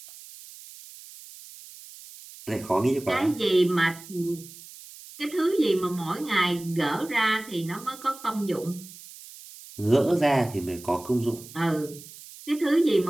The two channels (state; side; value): noise; right; hiss, 17 dB below the sound